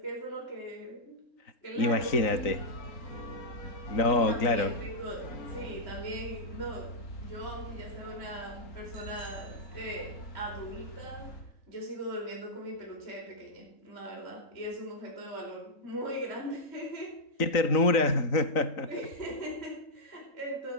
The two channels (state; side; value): late; right; 3.9 ms